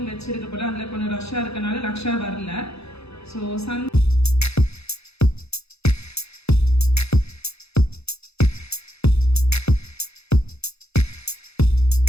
வச்சிருக்க போல, அதில் கொஞ்சம் ரஷ்ஷாக இருக்கனால லக்ஷா வரல. So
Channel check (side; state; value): right; late; 0.79 ms